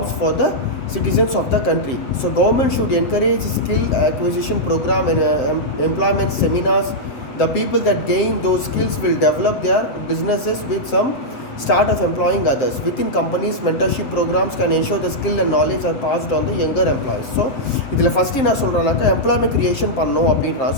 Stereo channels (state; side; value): late; right; 7.5 ms